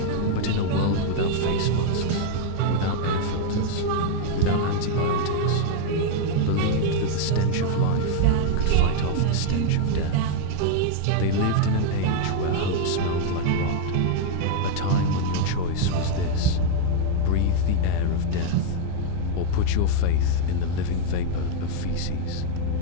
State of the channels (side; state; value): both; different; correlation 0.00